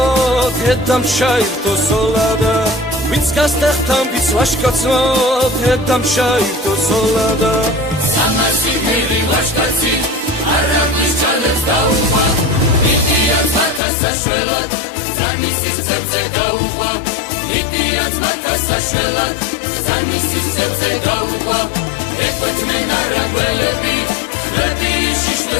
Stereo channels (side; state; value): right; drops out; at 13.8 s